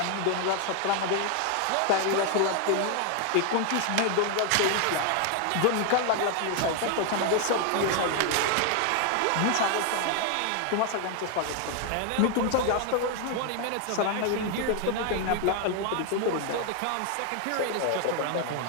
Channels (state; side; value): different; both; correlation 0.00